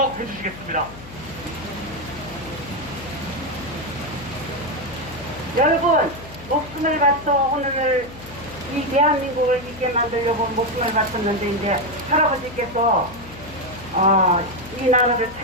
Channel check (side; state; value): left; noise; hum, 16 dB below the sound